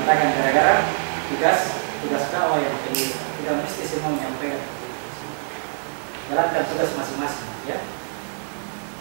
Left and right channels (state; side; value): silent; left; digital silence